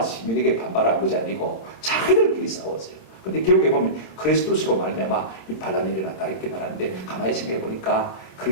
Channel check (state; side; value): late; right; 26 ms